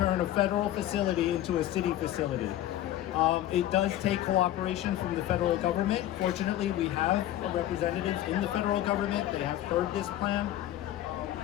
a federal facility into a city facility? It does take cooperation from the federal government. Fortunately, we have representatives in the federal government. They have heard this plan.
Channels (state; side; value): quieter; right; 13.2 dB